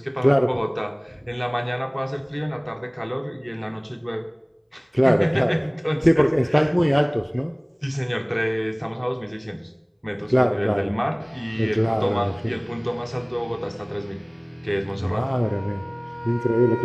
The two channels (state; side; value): identical; both; correlation 1.00